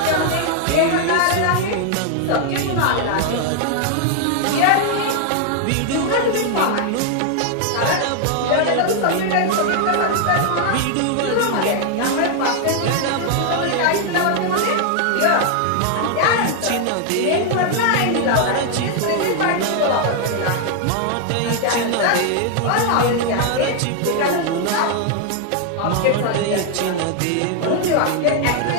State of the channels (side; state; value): both; different; correlation 0.00